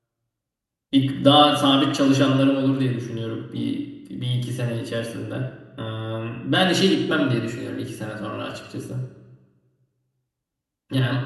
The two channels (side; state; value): both; identical; correlation 1.00